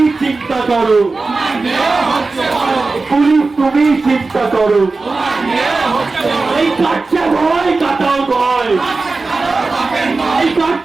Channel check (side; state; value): left; quieter; 3.8 dB